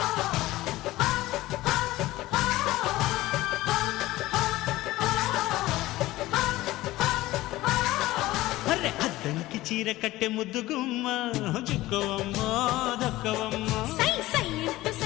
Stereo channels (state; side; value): quieter; right; 17.4 dB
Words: అద్దంకి చీర కట్టె ముద్దుగుమ్మ చుక్కవమ్మా దక్కవమ్మా సై సై